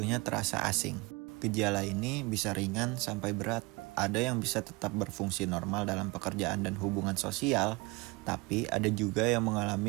terasa asing. Gejala ini bisa ringan sampai berat. Ada yang bisa tetap berfungsi normal dalam pekerjaan dan hubungan sosial, tapi ada juga yang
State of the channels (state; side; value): quieter; left; 25.7 dB